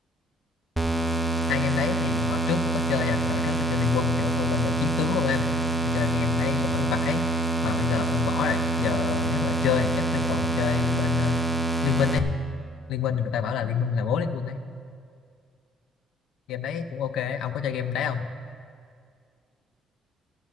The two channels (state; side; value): normal; both; correlation 0.52